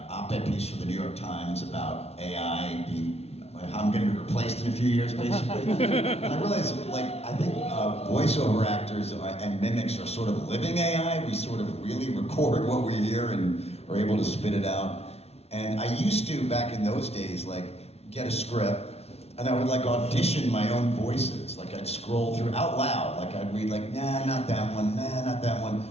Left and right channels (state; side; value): late; right; 0.30 ms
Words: op-ed piece for the New York Times about AI being, how I'm going to be replaced in a few years, basically. And I realize, I think voiceover actors and mimics are sort of living AI. We sort of really record what we hear and are able to spit it out. And I used to, back in those days, get a script, and I would audition my own voices. I'd scroll through out loud. I'd read nah, not that one, nah, not that one.